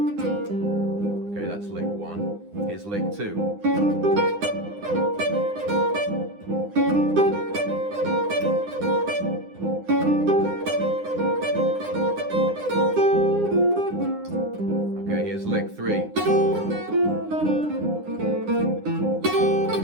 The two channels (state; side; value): late; left; 9.8 ms